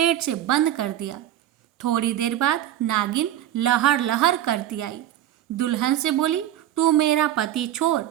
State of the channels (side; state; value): left; quieter; 12.2 dB